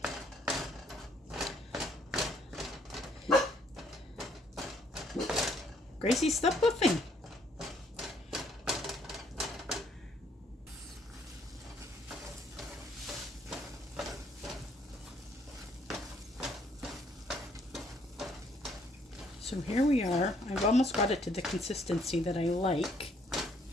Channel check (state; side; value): normal; both; correlation 0.67